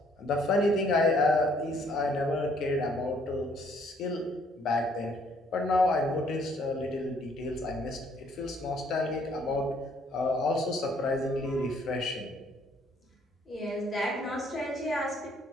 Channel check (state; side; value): normal; both; correlation 0.64